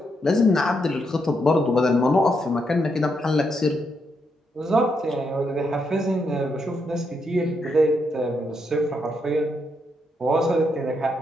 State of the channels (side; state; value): both; normal; correlation 0.79